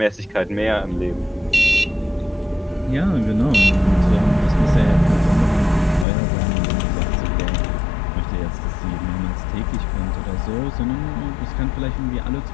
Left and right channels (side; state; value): right; drops out; at 6.1 s